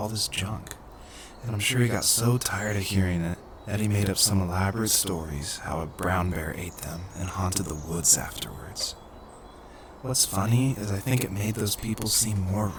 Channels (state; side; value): identical; both; correlation 1.00